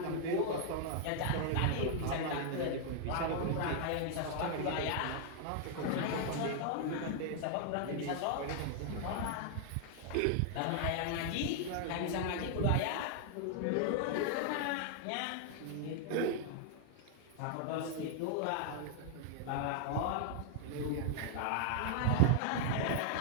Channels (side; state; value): both; different; correlation 0.00